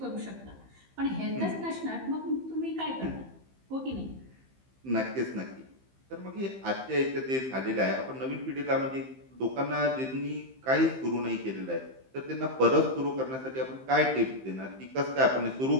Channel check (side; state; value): left; late; 15 ms